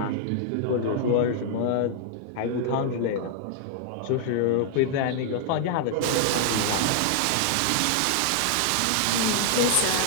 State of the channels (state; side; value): different; both; correlation -0.01